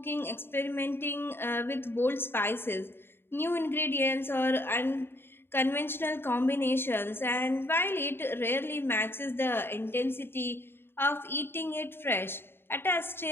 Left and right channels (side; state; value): right; late; 0.11 ms